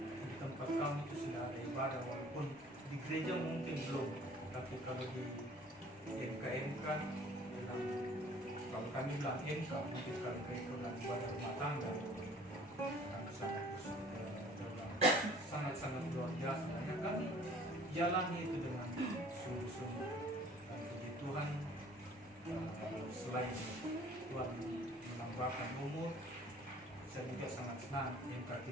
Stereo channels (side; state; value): right; noise; rumble, 30 dB below the sound